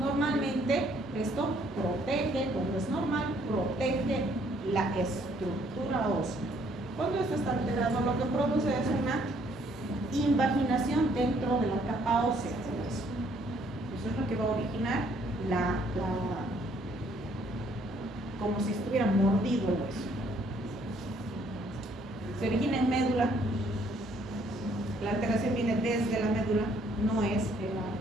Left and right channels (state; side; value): normal; both; correlation 0.65